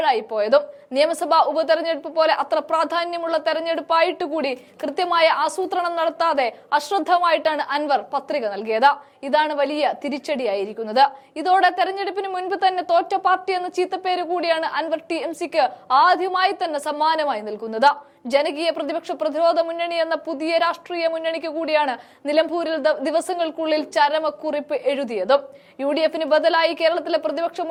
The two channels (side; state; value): both; identical; correlation 1.00